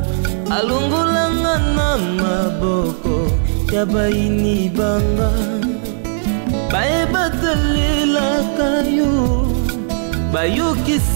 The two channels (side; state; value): left; silent; digital silence